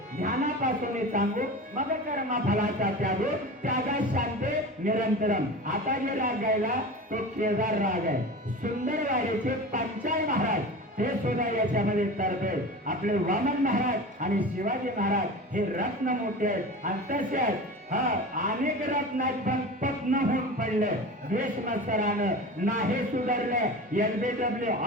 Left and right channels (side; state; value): both; normal; correlation 0.32